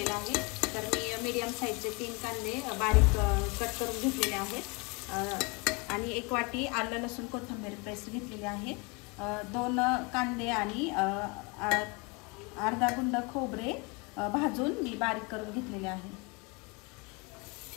आहे। तर मी मीडियम साईजचे 3 कांदे बारीक कट करून घेतलेले आहेत आणि 1 वाटी आलं लसूण कोथिंबीर पेस्ट घेतलेली आहे। 2 कांदे आणि अर्धा गुंड खोबरे भाजून मी बारीक करून घेतलेले आहे।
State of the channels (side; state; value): right; quieter; 28.4 dB